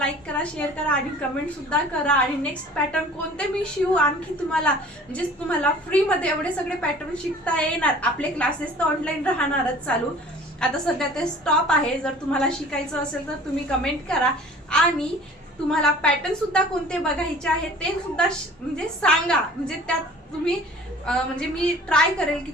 करा, शेअर करा आणि कमेंट सुद्धा करा. आणि नेक्स्ट पॅटर्न कोणते मी शिवू आणखी तुम्हाला, म्हणजे तुम्हाला फ्री मध्ये एवढे सगळे पॅटर्न शिकता येणार. आपले क्लासेस तर ऑनलाईन राहणारच चालू, आता सध्या ते स्टॉप आहे. जर तुम्हाला शिकायचं असेल तर तुम्ही कमेंट करा. आणि तुम्हाला पॅटर्न सुद्धा कोणते बघायचे आहे ते सुद्धा म्हणजे सांगा, म्हणजे त्यात तुम्ही म्हणजे मी ट्राय करेल की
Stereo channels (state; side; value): normal; both; correlation 0.47